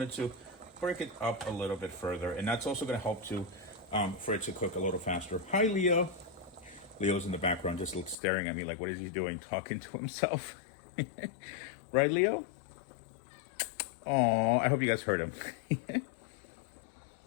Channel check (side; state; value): right; drops out; at 8.2 s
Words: to break it up a little bit further. And that's also going to help to for it to cook a little faster. Hi, Leo. Leo's in the background just staring at me like, what is he doing? Talking to himself. Right, Leo? Oh, I hope you guys heard him.